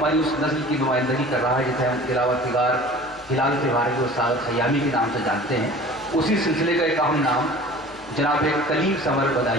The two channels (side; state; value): left; noise; hum, 25 dB below the sound